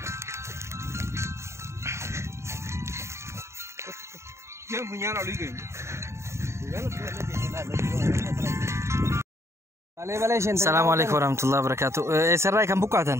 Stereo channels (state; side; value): late; left; 0.13 ms